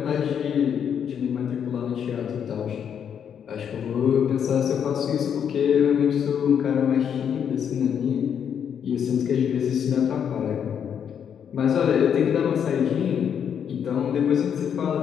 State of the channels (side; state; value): right; quieter; 8.1 dB